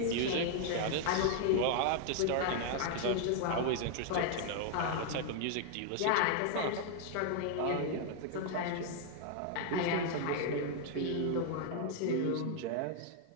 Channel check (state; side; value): different; both; correlation 0.00